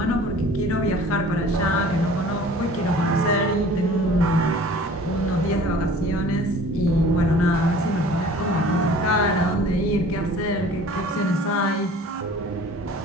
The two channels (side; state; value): both; normal; correlation 0.47